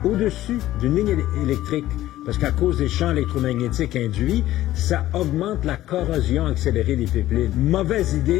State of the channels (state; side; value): quieter; right; 14.7 dB